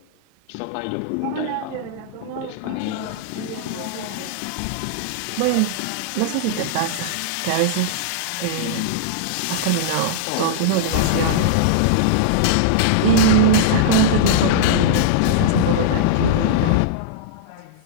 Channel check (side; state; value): both; different; correlation -0.02